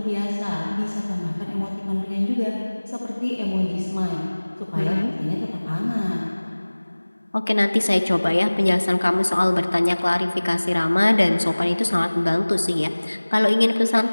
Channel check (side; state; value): both; inverted; correlation -1.00